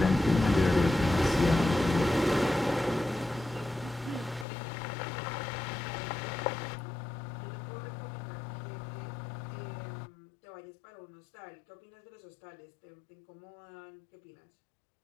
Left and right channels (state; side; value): drops out; right; at 4.5 s